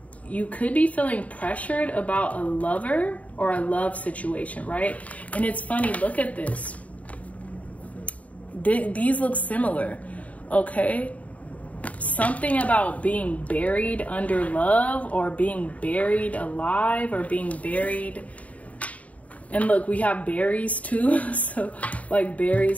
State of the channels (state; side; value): late; right; 0.069 ms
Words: you could be feeling pressured about a lover or a love situation, right? And it's funny, look at this. These look similar, okay? Something about being buried under love, or being buried alive, or being buried. And look, we have berries too. So like